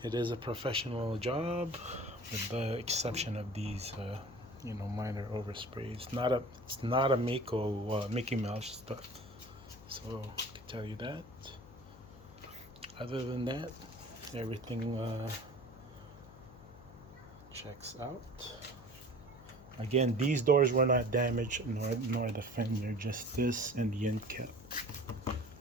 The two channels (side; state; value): left; noise; hum, 19 dB below the sound